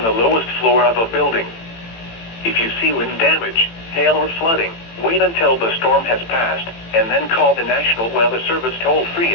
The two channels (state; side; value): late; right; 18 ms